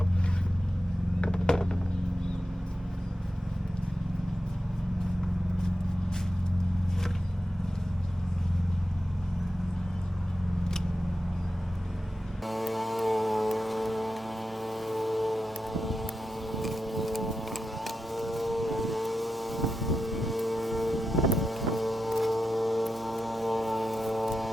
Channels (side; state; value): both; normal; correlation 0.90